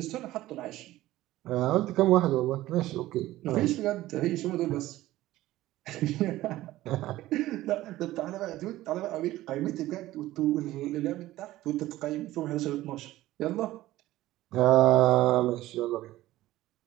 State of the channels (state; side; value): quieter; left; 16.0 dB